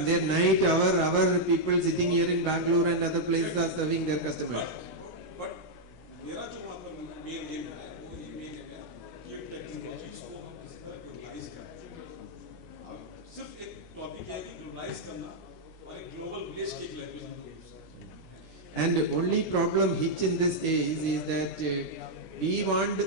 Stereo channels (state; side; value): late; right; 17 ms